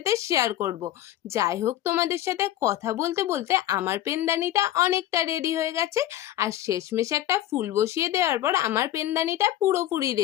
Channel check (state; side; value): quieter; right; 13.3 dB